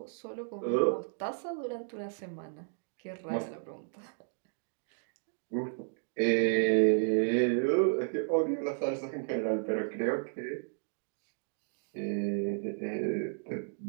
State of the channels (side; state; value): left; silent; digital silence